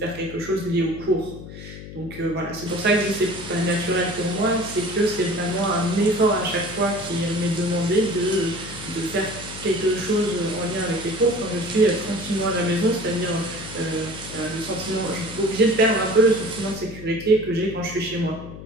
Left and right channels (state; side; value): noise; left; hum, 13 dB below the sound